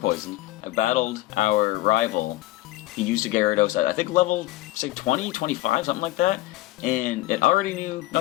I battled our rival. He used a Gyarados at, I think, level, say, 20, 25, something like that. And it already knew, no,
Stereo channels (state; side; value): quieter; right; 17.3 dB